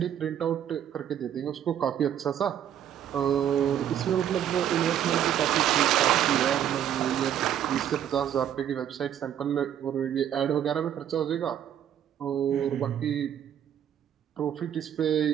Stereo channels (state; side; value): quieter; left; 10.1 dB